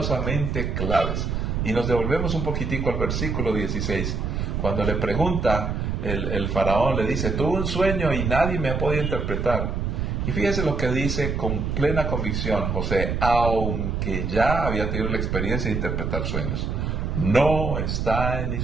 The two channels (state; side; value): noise; right; rumble, 1 dB below the sound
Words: claves. Y nos devolvemos un poquitico al versículo 16. Cuando le pregunta, el faraón le dice: tuve un sueño y nadie me ha podido interpretar. Y fíjese lo que dice con plena convicción José, aunque ya había tenido la experiencia de interpretar sueños. No está en